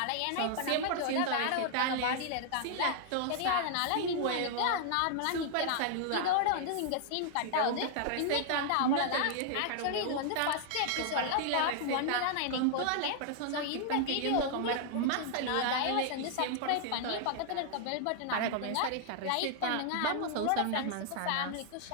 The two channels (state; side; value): different; both; correlation 0.00